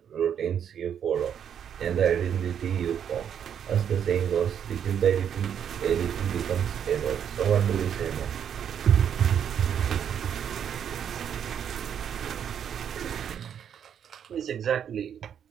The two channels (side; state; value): left; quieter; 8.6 dB